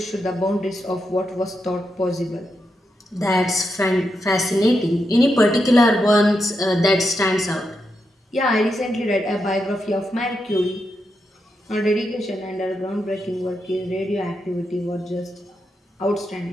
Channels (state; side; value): normal; both; correlation 0.84